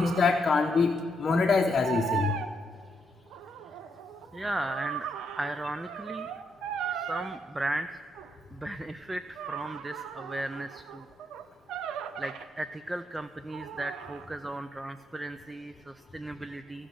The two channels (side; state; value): both; normal; correlation 0.78